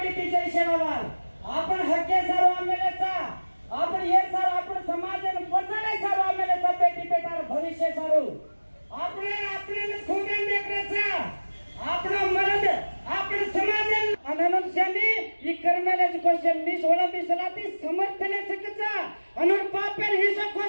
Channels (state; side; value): inverted; both; correlation -1.00